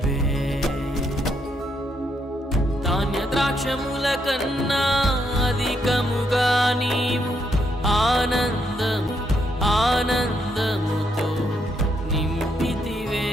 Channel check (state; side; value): normal; both; correlation 0.76